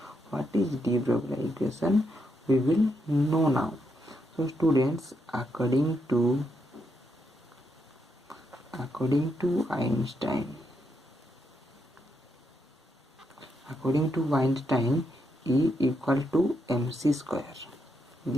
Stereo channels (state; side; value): normal; both; correlation 0.80